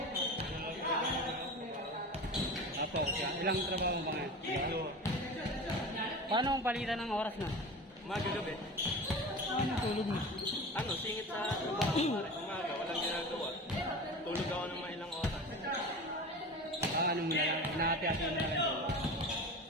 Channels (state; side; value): normal; both; correlation 0.32